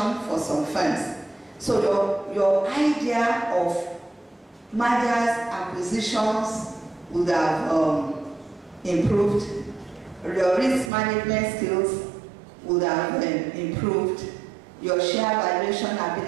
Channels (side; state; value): left; drops out; at 10.9 s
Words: for some firms. So your idea of mergers, acquisitions would have improved. Your risk management skills would have improved. Your share valuation